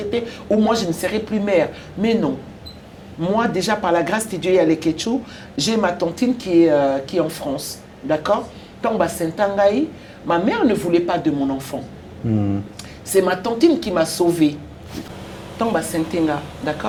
ou moi je ne serai plus mère. Mais non. Moi, déjà, par la grâce de Dieu et à l'Eketchou, j'ai ma tantine qui est en France. D'accord? Ma mère ne voulait pas de mon enfant. C'est ma tantine qui m'a sauvée.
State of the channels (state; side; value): identical; both; correlation 1.00